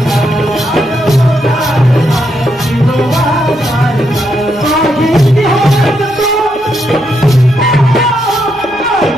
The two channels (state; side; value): noise; right; hum, 26 dB below the sound